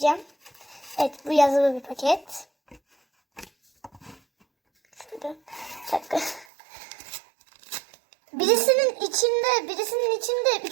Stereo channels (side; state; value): left; drops out; at 6.5 s